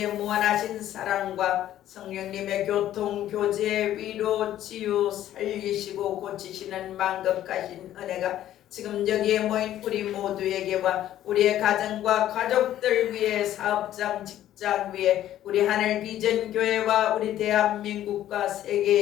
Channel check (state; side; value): quieter; right; 12.4 dB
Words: 무한하신 사랑과 성령님의 교통, 교제, 위로, 치유, 살리시고 고치시는 만급하신 은혜가 지금 여기에 모인 우리 모두에게와 우리의 가정과 가족들 위해 사업장, 직장 위에 우리 하늘 비전 교회와 우리 대한민국과